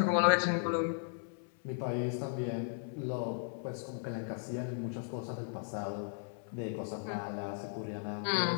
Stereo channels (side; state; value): right; silent; 54 dB below the other